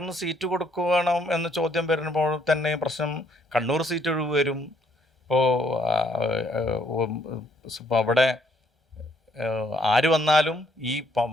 സീറ്റ് കൊടുക്കണം എന്ന ചോദ്യം വരുമ്പോൾ തന്നെ പ്രശ്നം കണ്ണൂർ സീറ്റ് ഒഴിവ് വരും. ഇപ്പോൾ അവിടെ ആര് വന്നാലും ഈ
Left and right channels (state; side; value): normal; both; correlation 0.68